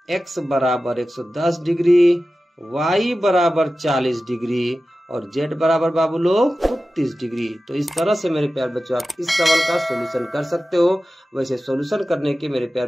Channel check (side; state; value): both; normal; correlation 0.95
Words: x बराबर 110 डिग्री, y बराबर 40 डिग्री और z बराबर बाबू लोग 30 डिग्री। तो इस तरह से मेरे प्यारे बच्चों आप इस सवाल का सॉल्यूशन कर सकते हो। वैसे सॉल्यूशन करने के मेरे